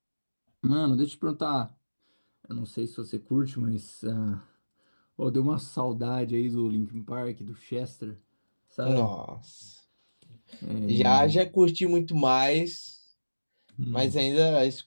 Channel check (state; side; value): inverted; both; correlation -1.00